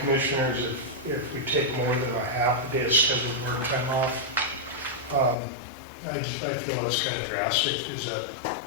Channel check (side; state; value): right; drops out; at 5.4 s